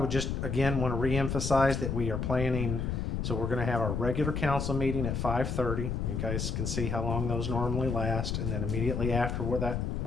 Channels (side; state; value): left; noise; rumble, 1 dB below the sound